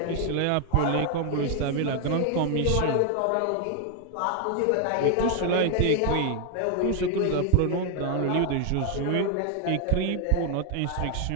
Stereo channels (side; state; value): both; different; correlation 0.00